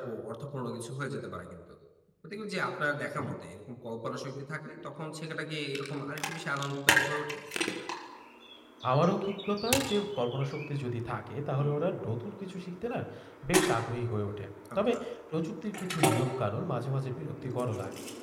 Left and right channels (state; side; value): identical; both; correlation 1.00